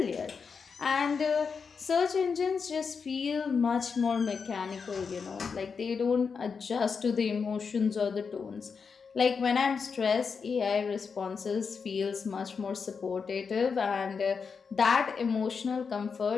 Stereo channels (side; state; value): right; quieter; 5.6 dB